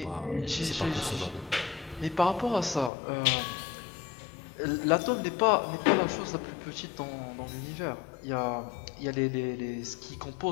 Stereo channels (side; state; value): right; drops out; at 2.9 s